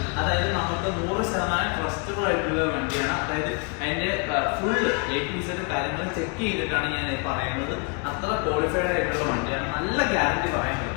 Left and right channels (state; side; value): quieter; right; 33.3 dB